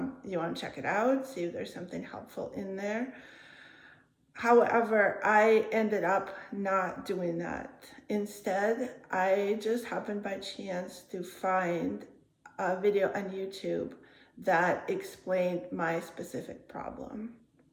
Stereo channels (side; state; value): both; identical; correlation 1.00